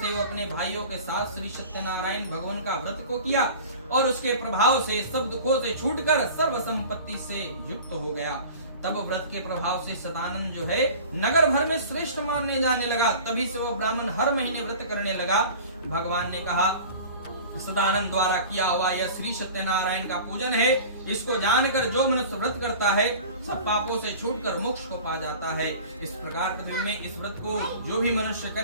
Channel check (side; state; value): both; inverted; correlation -0.40